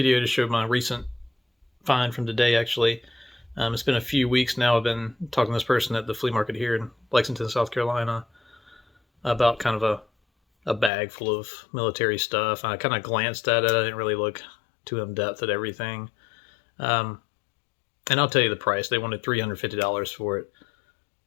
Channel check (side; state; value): right; drops out; at 10.9 s